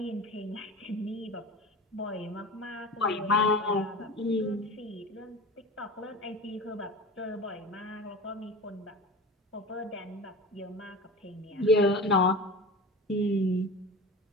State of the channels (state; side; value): normal; both; correlation 0.33